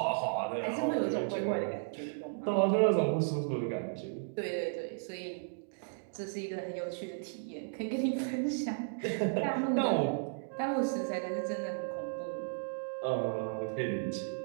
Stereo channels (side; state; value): left; silent; digital silence